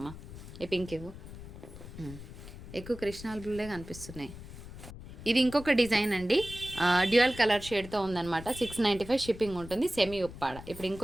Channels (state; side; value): noise; left; rumble, 14 dB below the sound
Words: ఈ పింక్ ఇవ్వు. ఎక్కువ కృష్ణాల బ్లూలే కనిపిస్తున్నాయి. ఇది ఇంకొక డిజైన్ అండి, డ్యూయల్ కలర్ షేడ్తో ఉందన్నమాట. 695 షిప్పింగ్ ఉంటుంది, సెమీ ఉప్పాడ. ఇప్పుడు